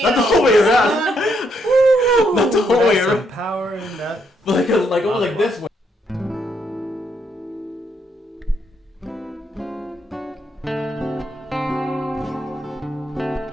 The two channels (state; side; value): normal; both; correlation 0.75